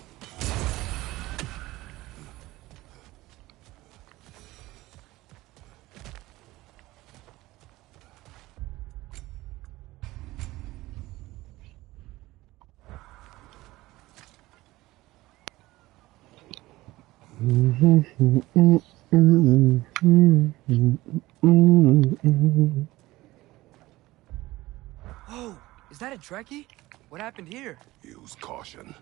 Is that a Trekkie? What happened here? Use caution.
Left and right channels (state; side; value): quieter; left; 18.3 dB